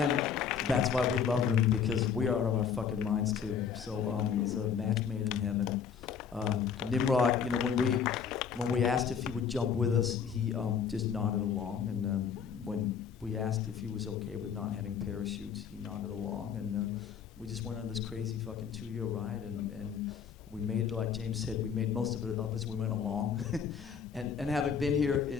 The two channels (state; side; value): quieter; right; 7.1 dB